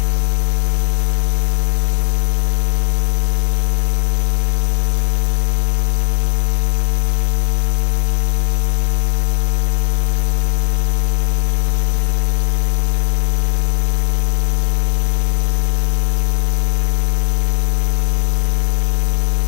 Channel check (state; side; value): silent; right; 67 dB below the other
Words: conf httpd. Trabaja con Apache, ¿no? Se configura como cualquier sitio. Esto es para la interfaz gráfica. Bueno,